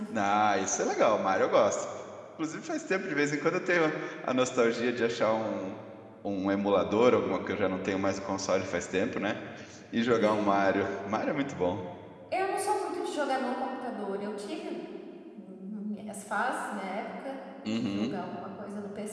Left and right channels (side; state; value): both; identical; correlation 1.00